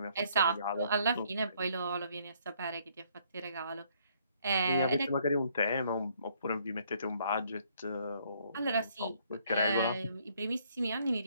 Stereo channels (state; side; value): inverted; both; correlation -0.66